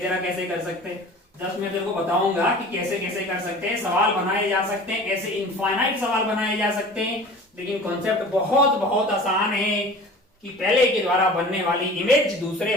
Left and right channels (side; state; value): both; normal; correlation 0.41